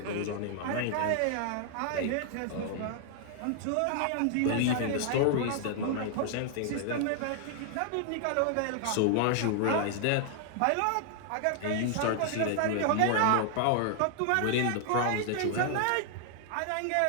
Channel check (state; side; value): different; both; correlation 0.00